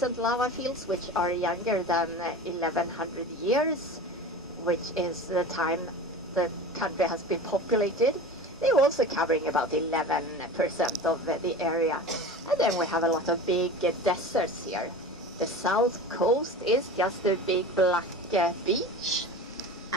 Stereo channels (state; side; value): normal; both; correlation 0.34